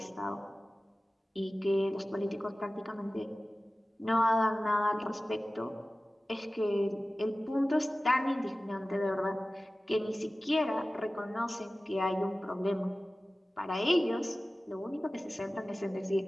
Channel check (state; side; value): normal; both; correlation 0.96